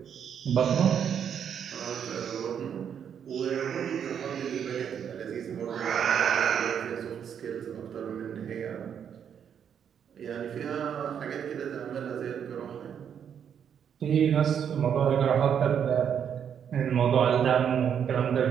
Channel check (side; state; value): left; quieter; 8.2 dB